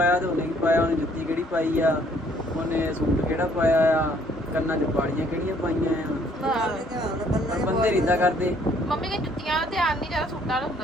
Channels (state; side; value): normal; both; correlation 0.63